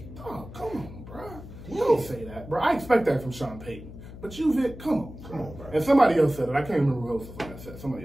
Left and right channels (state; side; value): noise; left; hum, 14 dB below the sound